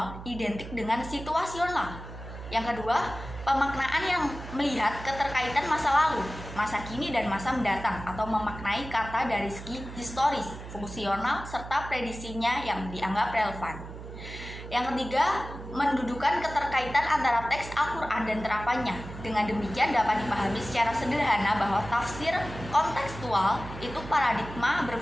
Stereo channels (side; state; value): right; noise; hum, 12 dB below the sound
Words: identik dengan situasional. Yang kedua, pemaknaan yang melihat keterkaitan masa lalu, masa kini, dan masa mendatang, atau memaknai kata dari segi historis, fungsional, serta prediksinya yang dianggap relevan. Yang ketiga, mendudukan keterkaitan antara teks Al-Quran dan terapannya. Dengan demikian dapat dipahami secara sederhana bahwa tafsir kontekstual itu paradigma